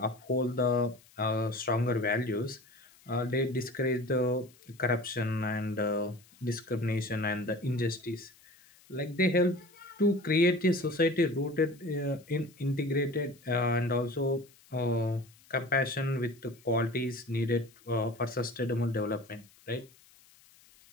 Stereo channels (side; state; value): left; noise; hiss, 27 dB below the sound